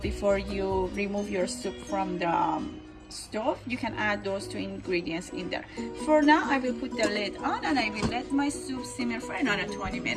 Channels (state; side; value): identical; both; correlation 1.00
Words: you remove your soup from the stove. You can add those two ingredients in there. For now, I will put the lid on and I will let my soup simmer for another 20